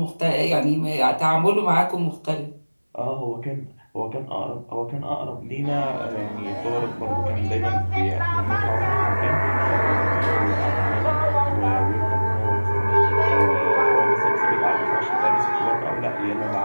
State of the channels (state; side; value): inverted; both; correlation -1.00